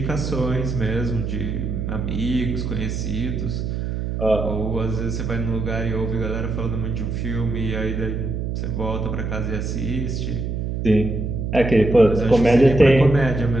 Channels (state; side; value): noise; right; hum, 3 dB below the sound